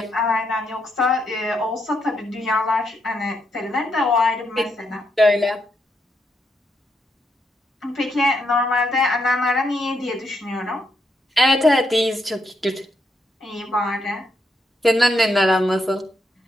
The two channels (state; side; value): normal; both; correlation 0.79